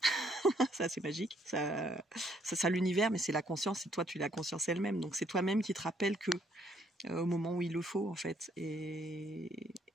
Ça, c'est magique. Ça l'univers, mais c'est la conscience, et toi, tu es la conscience elle-même. Donc, c'est toi-même qui te rappelle que au moment où il le faut, en fait. Et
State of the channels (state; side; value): normal; both; correlation 0.68